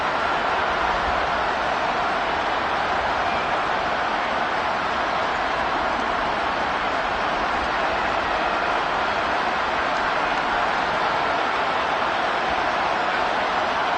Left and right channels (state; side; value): identical; both; correlation 1.00